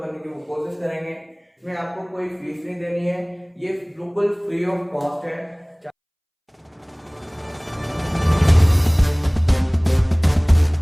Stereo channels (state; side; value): identical; both; correlation 1.00